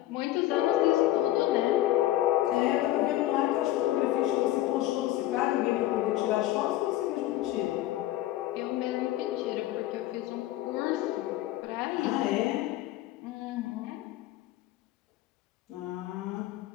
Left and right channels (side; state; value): right; quieter; 14.8 dB